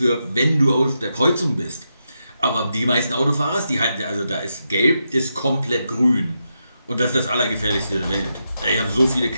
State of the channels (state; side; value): inverted; both; correlation -0.85